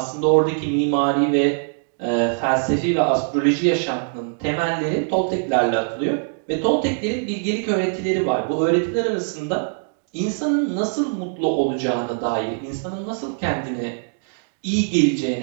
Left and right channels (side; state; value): left; silent; digital silence